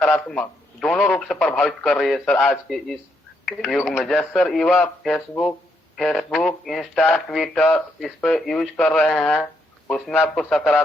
दोनों रूप से प्रभावित कर रही है सर। आज के इस युग में जैसे सर युवा फेसबुक, इंस्टा, ट्विटर इस पे यूज कर रहे हैं, उसमें आपको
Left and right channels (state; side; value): normal; both; correlation 0.77